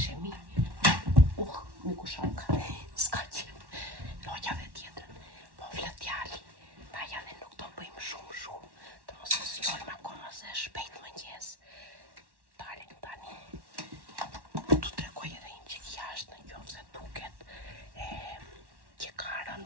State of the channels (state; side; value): late; left; 1.1 ms